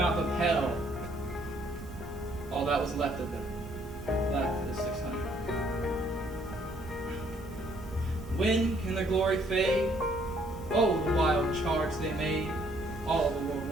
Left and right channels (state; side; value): normal; both; correlation 0.65